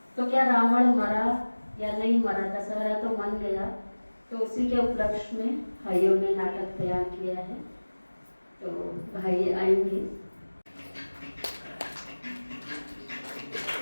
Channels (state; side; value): inverted; both; correlation -1.00